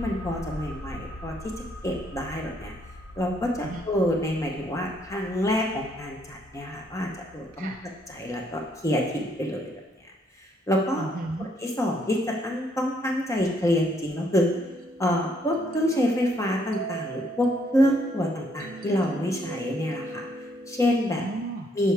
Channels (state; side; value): normal; both; correlation 0.70